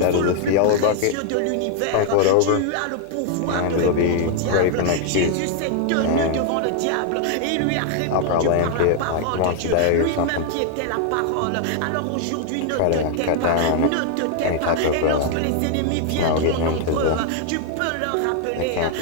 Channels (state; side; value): different; both; correlation 0.00